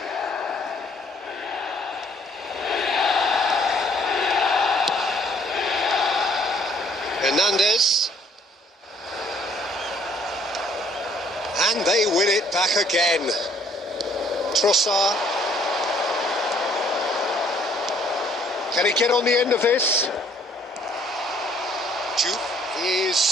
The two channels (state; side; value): normal; both; correlation 0.63